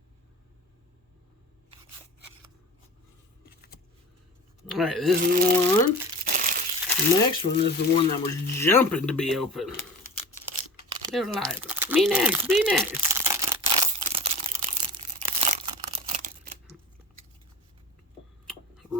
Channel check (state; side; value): normal; both; correlation 0.36